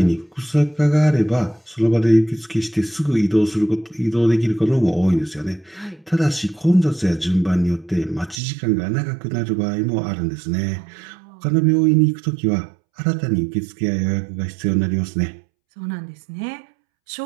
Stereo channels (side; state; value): left; drops out; at 8.4 s